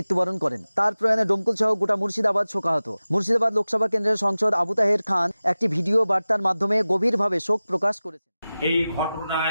করেন। তার প্রয়াণে ডোমকল সহ গোটা মুর্শিদাবাদ শোকাহত। মুর্শিদাবাদ লোকসভা কেন্দ্রের সাংসদ আবু তাহের খান একটি ভিডিও বার্তার মাধ্যমে গভীরভাবে শোক প্রকাশ করেছেন। এই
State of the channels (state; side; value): inverted; both; correlation -0.96